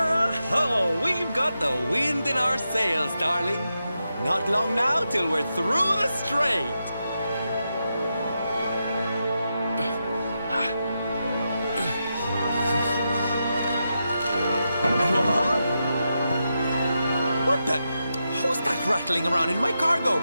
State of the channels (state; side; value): inverted; both; correlation -0.87